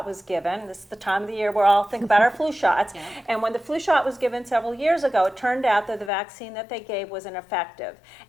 was given. This is the time of the year where all think about our flu shots. Yeah. And when the flu shot was given several years ago, it turned out that the vaccine that they gave was ineffective.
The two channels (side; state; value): right; drops out; at 6.1 s